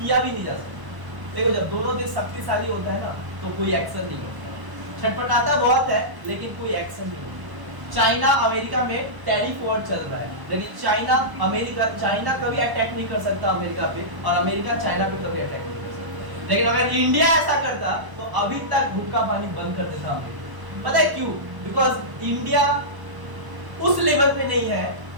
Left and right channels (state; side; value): late; left; 1.0 ms